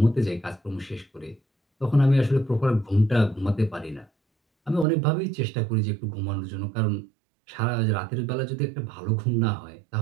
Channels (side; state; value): left; drops out; at 4.9 s